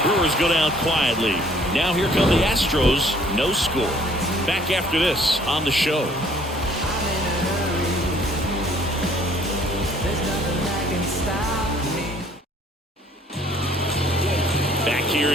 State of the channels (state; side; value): normal; both; correlation 0.59